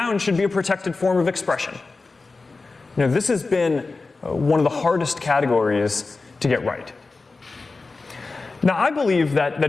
should be a protected form of expression. This has been one of the hardest categories to get right. Now, I believe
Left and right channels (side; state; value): right; quieter; 3.8 dB